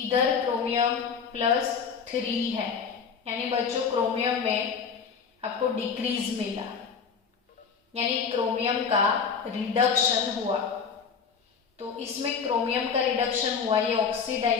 क्रोमियम +3 है, यानी बच्चों क्रोमियम में आपको डिक्रीज मिला, यानी क्रोमियम का रिडक्शन हुआ। तो इसमें क्रोमियम का रिडक्शन हुआ, ये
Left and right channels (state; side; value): quieter; right; 6.2 dB